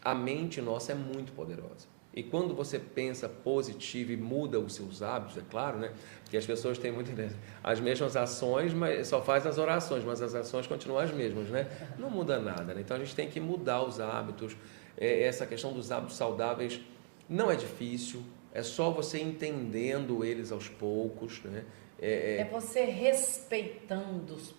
a mente nossa é muito poderosa. E quando você pensa positivo e muda os seus hábitos, é claro, né? Porque as pessoas têm muito as mesmas ações, mas só faz as orações, mas as ações continuam as mesmas, né? Não muda nada, né? Então a gente tem que mudar os hábitos. Essa questão dos hábitos saudáveis não é difícil, é só você entendendo eles aos poucos, né? É você respeitando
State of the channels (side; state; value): left; silent; digital silence